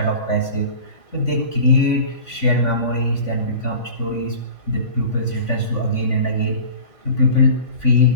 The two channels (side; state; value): right; late; 3.5 ms